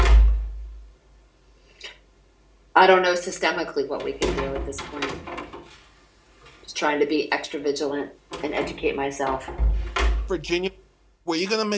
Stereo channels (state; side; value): identical; both; correlation 1.00